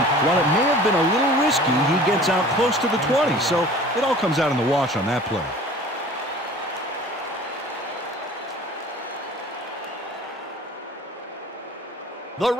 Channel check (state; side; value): normal; both; correlation 0.45